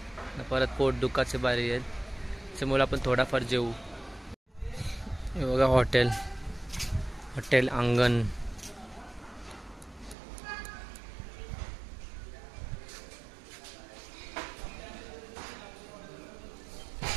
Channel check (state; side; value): drops out; left; at 10.2 s